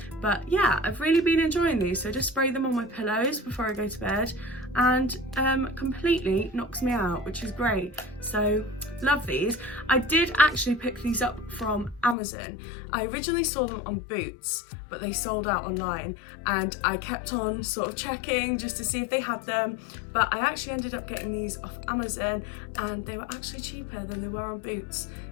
But yeah, I've really been enjoying these. So just spray them on my pillows before I go to bed, and completely knocks me out, which is great. So love these. I did actually pick these up from Amazon. I originally saw them on Boots, but they sold out online, and I kept on sort of checking just to see if they had them, but I actually ended up getting these off Amazon and they were actually cheaper than they were on Boots.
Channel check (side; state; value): right; drops out; at 12.2 s